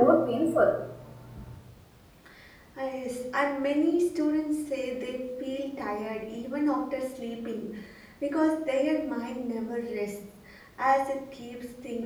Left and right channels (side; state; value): both; identical; correlation 1.00